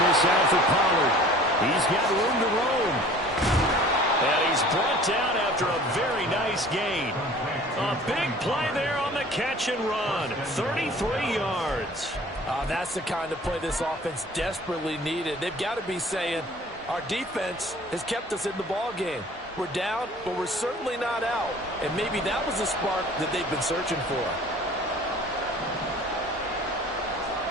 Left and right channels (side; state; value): both; normal; correlation 0.48